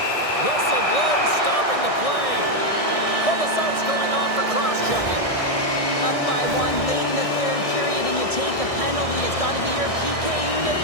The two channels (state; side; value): late; right; 1.6 ms